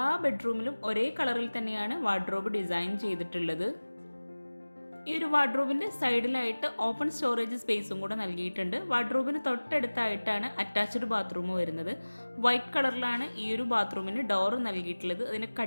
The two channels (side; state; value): both; inverted; correlation -1.00